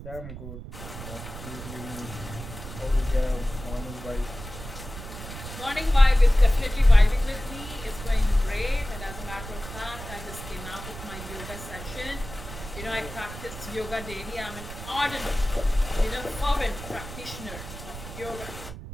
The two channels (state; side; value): noise; right; rumble, 11 dB below the sound